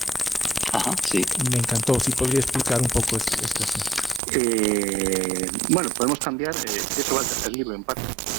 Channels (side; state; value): left; drops out; at 4.2 s